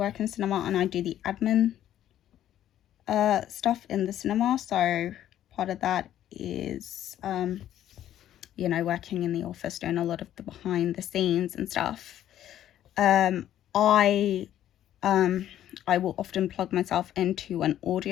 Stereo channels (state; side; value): quieter; right; 11.7 dB